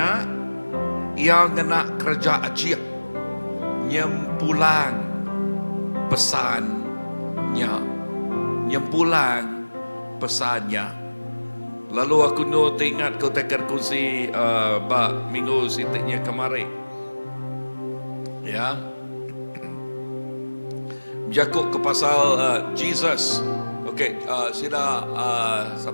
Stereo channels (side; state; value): both; inverted; correlation -1.00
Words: yang kena kerja ajiah nyempulang pesannya, lalu aku teringat kau tekan kursi minggu sitiknya kemarin ya, jakuk ke pasal Jesus. Okey, sida